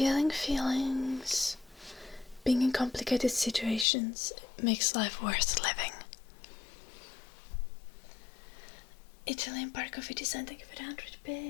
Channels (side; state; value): right; drops out; at 3.9 s